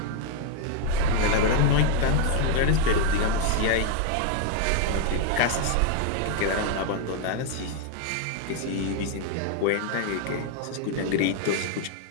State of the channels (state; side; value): different; both; correlation 0.00